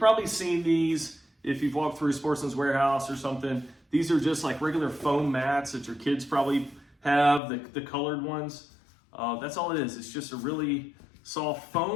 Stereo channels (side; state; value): right; drops out; at 7.4 s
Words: seen these if you've walked through Sportsman's Warehouse or something. These are just like regular foam mats that your kids probably have, the colored ones. That's all it is. It's just a really soft